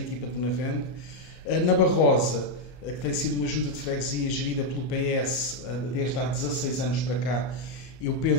de Benavente. Na Barrosa, que tem sido uma junta de freguesia gerida pelo PS desde há 16 anos para cá, eu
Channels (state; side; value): late; right; 32 ms